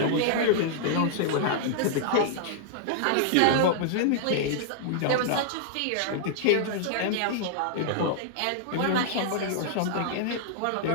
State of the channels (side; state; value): both; different; correlation -0.01